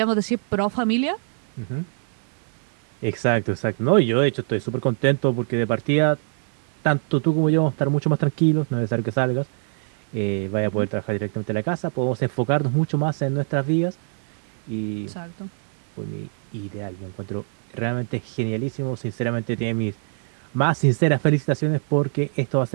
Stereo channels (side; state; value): left; silent; 58 dB below the other